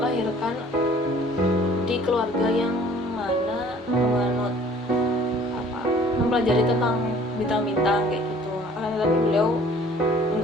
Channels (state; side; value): normal; both; correlation 0.53